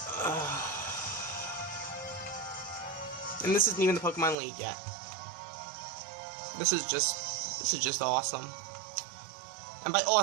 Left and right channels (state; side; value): drops out; left; at 4.4 s